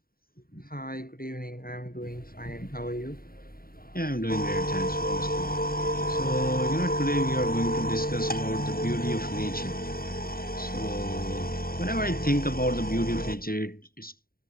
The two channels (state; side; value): late; right; 0.43 ms